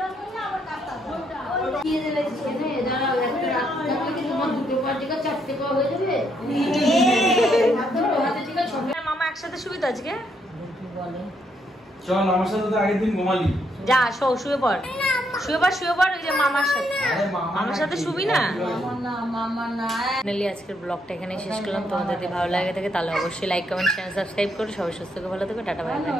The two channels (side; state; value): both; normal; correlation 0.75